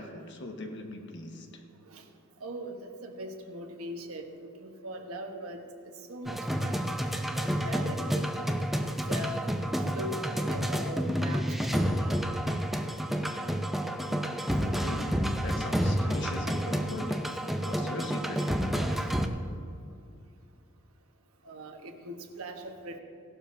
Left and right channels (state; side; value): normal; both; correlation 0.84